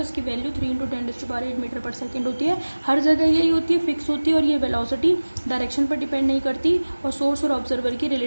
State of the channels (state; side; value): inverted; both; correlation -1.00